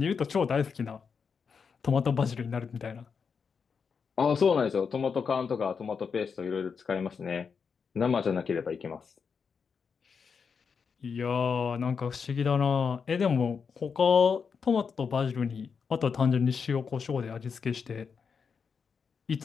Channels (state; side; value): quieter; right; 5.9 dB